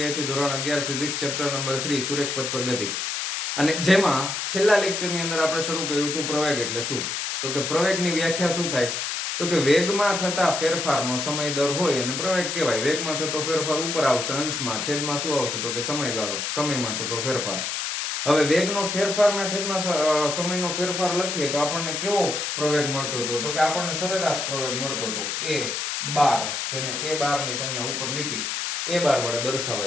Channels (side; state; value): left; noise; hiss, 2 dB below the sound